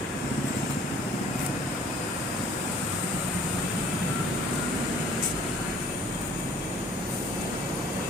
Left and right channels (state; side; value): normal; both; correlation 0.54